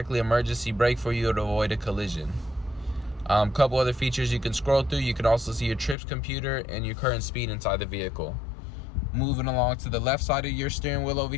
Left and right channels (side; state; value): right; drops out; at 6.0 s